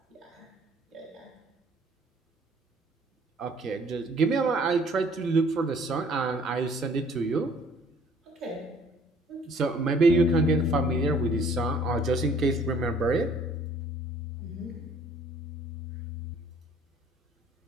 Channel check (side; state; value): both; normal; correlation 0.56